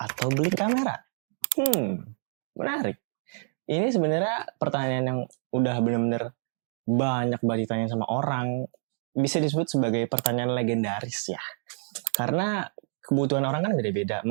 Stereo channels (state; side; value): silent; left; 60 dB below the other